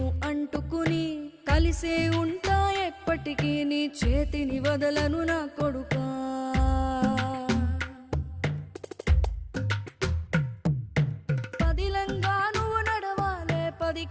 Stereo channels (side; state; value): both; identical; correlation 1.00